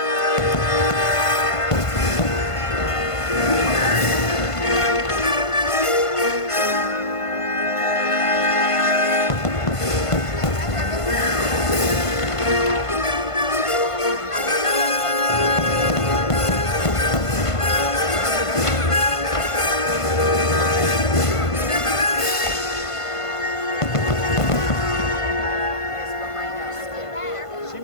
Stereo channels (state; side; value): late; right; 1.5 ms